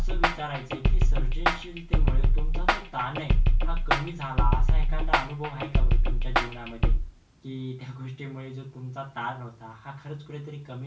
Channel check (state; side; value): identical; both; correlation 1.00